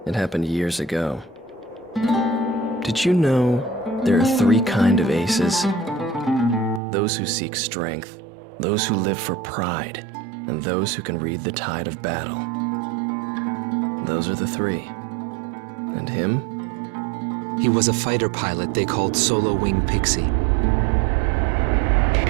It happened years ago. Did you know there are 3 kinds of aces? Those who seek strength, those who live for pride, and those who can read the tide of battle. Those are the 3. And him? He was a fighter pilot they called Solo Wing Pixie.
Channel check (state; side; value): drops out; left; at 6.8 s